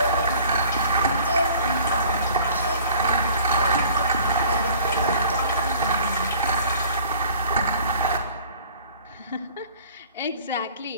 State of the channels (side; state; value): both; inverted; correlation -0.50